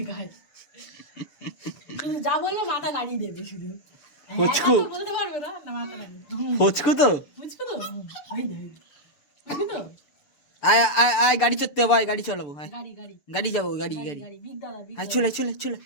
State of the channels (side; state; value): right; late; 6.8 ms